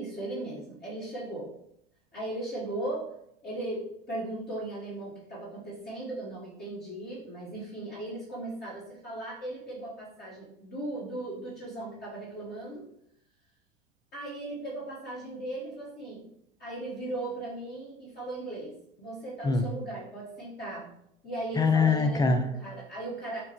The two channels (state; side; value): normal; both; correlation 0.53